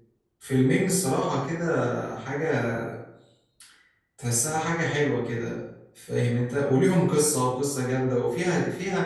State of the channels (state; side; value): identical; both; correlation 1.00